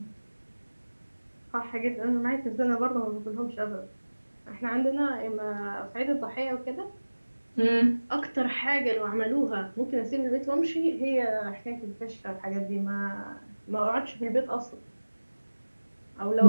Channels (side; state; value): both; inverted; correlation -1.00